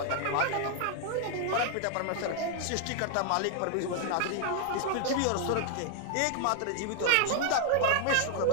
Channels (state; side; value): different; both; correlation 0.00